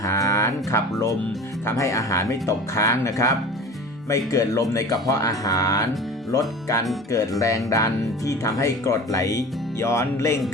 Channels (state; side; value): normal; both; correlation 0.38